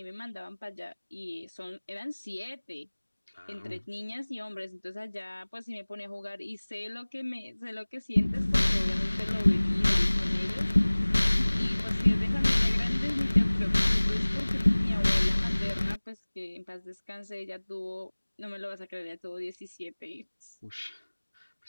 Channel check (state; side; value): inverted; both; correlation -1.00